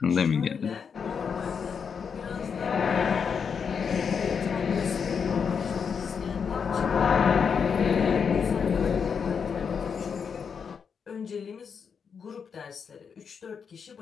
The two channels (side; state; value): right; quieter; 6.4 dB